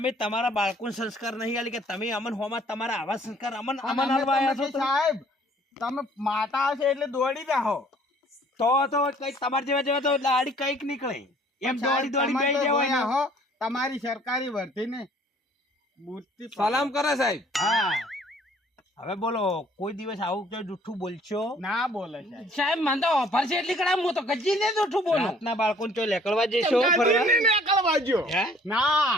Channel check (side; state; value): both; normal; correlation 0.57